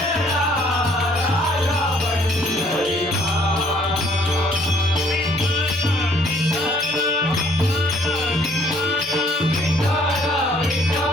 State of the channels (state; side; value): normal; both; correlation 0.62